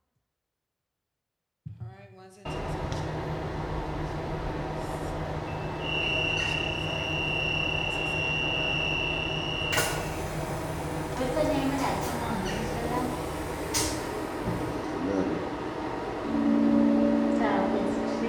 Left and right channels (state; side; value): identical; both; correlation 1.00